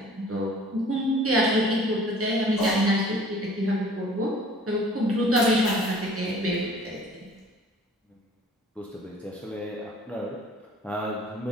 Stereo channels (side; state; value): both; normal; correlation 0.51